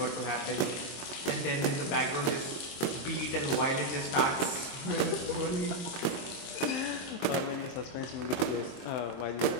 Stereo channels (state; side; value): late; right; 22 ms